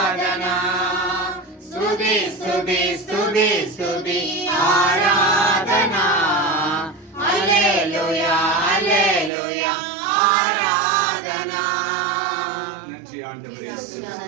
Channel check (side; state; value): left; drops out; at 9.3 s